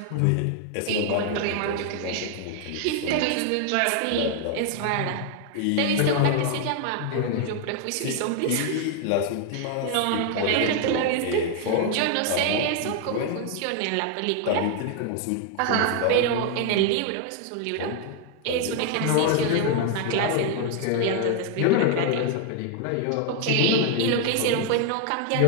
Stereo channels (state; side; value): different; both; correlation 0.00